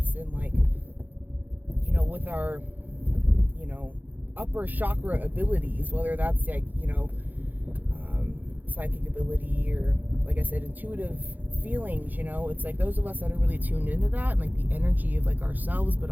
and like, you know, with our, you know, upper chakra abilities, whether that's like, you know, psychic ability or, like I said, intuitive feelings. You know, it's like those of us that are really tuned into that and like the energy of like ourselves, but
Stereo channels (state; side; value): late; left; 0.084 ms